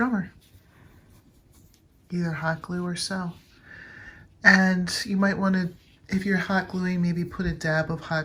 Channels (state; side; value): identical; both; correlation 1.00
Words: either hot glue or sew. And you might want to, if you're hot gluing, maybe put a dab of